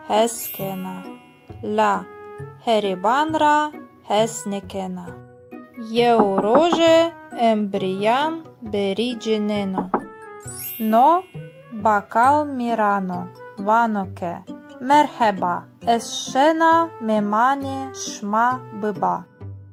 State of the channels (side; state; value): both; identical; correlation 1.00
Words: heskena. La heribanra hesnekena. Eu roje embrian berigeneno. No bakal mirano vanoke. Merheba escena memane şma bıba.